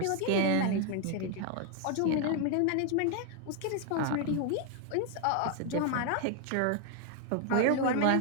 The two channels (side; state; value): both; different; correlation 0.01